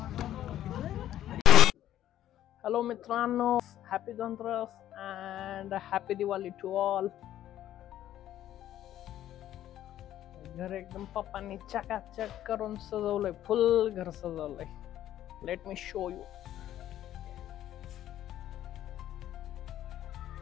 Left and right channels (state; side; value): quieter; right; 12.3 dB